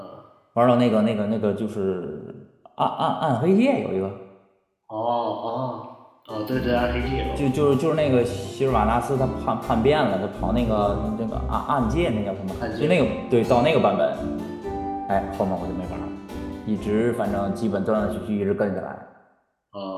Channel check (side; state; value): both; identical; correlation 1.00